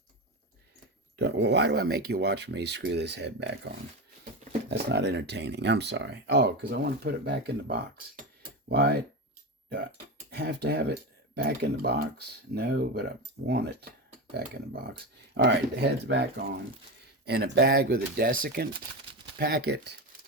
Well, why do I make you watch me screw this head back on? That's not entertaining. I'm sorry. Oh, because I want to put it back in the box. Why do I have to have it back in the box? No, but I want it back in the box. All right, the head's back on. In a bag with a desiccant packet.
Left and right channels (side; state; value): both; normal; correlation 0.18